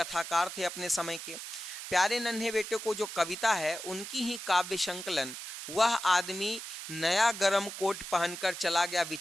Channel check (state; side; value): noise; right; hiss, 9 dB below the sound